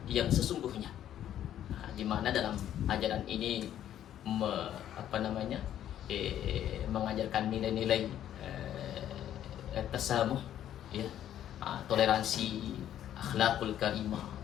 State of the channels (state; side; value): quieter; right; 11.1 dB